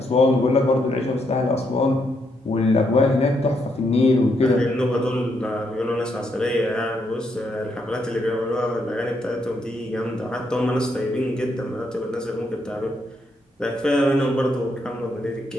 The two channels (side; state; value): both; normal; correlation 0.77